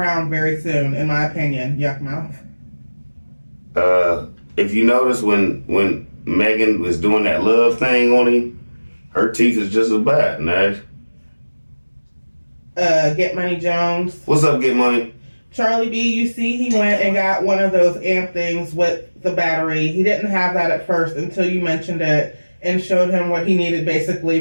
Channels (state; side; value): inverted; both; correlation -1.00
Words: very soon, in my opinion. Yuck mouth. If you notice when Megan was doing that love thing on him, her teeth is just as bad, Nash. Get Money Jones. What's up, Get Money? Charlie B, you see he went and got one of those amp things with the battery. He didn't have that at first until you mentioned it and showed him what he needed